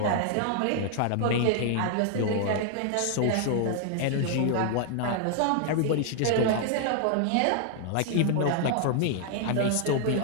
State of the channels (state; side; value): different; both; correlation 0.00